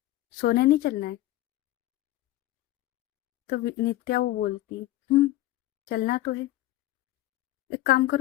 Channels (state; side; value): quieter; right; 15.9 dB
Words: सोने नहीं चलना है? तो नित्या वो बोलती है, चलना तो है। एक काम